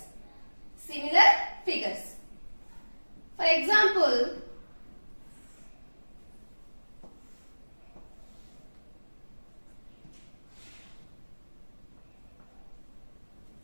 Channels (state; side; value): inverted; both; correlation -1.00